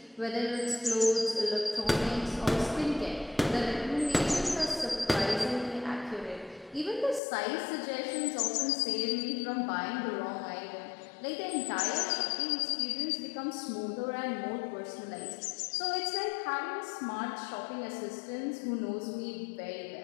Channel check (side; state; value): right; drops out; at 7.2 s